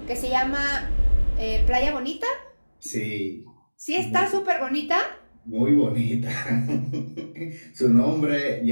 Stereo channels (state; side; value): inverted; both; correlation -1.00